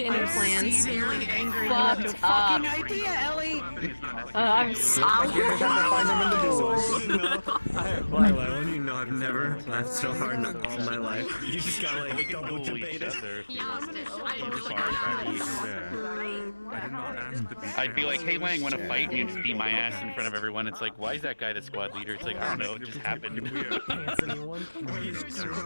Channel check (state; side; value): inverted; both; correlation -1.00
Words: plans. Fucked up. idea, Ellie. I'm Lila, you know I've never laughed so hard in all my life. You just got like double debated. I'd be like, hey Lang, wanna fight? And you'd just beat my ass in front of everyone. It's like, why is that guy the squad leader? It's like, I don't know, it just happened.